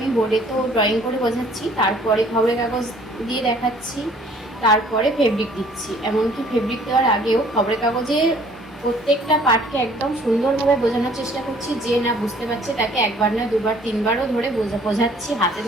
বোর্ডে তো ড্রয়িং করে বোঝাচ্ছি, তারপরে খবরের কাগজ দিয়ে দেখাচ্ছি, তারপরে ফেব্রিক দিচ্ছি। এমনকি ফেব্রিক দেওয়ার আগেও খবরের কাগজে প্রত্যেকটা পার্টকে একদম সুন্দরভাবে বোঝানোর চেষ্টা করছি। যে না বুঝতে পারছে তাকে একবার না দুবার তিনবারও ধরে বোঝাচ্ছি, হাতে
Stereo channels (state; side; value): normal; both; correlation 0.56